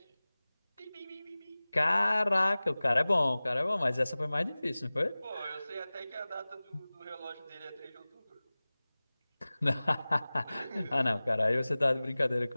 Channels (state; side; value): inverted; both; correlation -0.99